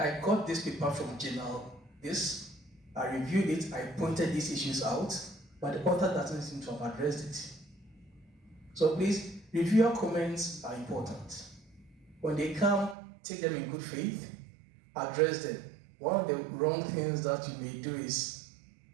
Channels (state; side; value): drops out; left; at 13.0 s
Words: I got this paper from journal this, I reviewed it, I pointed these issues out, but the author doesn't seem to have addressed it. So please, reviewer comments are important. When they come, take them in good faith, address them. One of the wrong things that you may do is